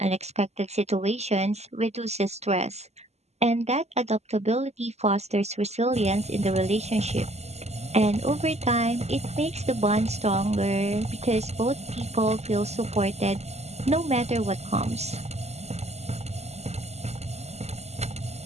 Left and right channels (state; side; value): late; left; 0.32 ms